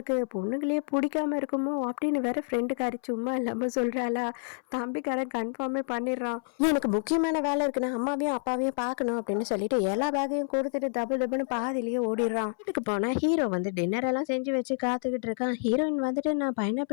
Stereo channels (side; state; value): right; silent; 59 dB below the other